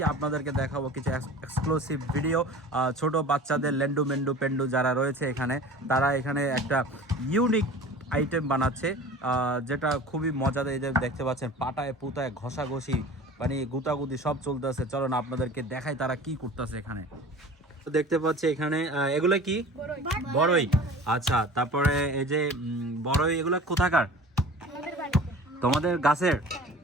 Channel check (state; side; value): normal; both; correlation 0.40